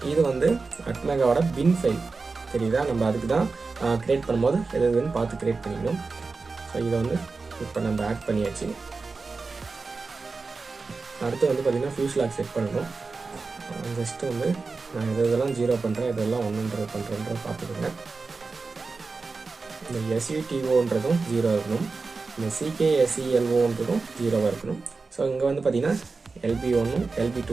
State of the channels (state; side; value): quieter; left; 4.1 dB